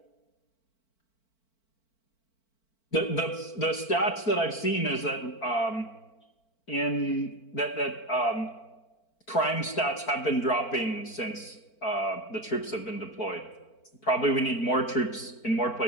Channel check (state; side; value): late; right; 4.5 ms